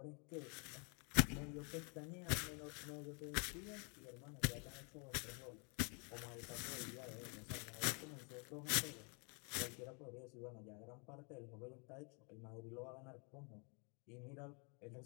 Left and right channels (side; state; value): right; quieter; 35.6 dB